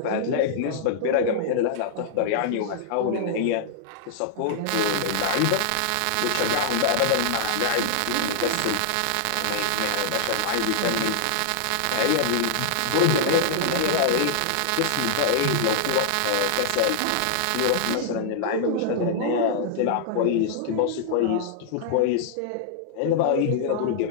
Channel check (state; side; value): different; both; correlation -0.01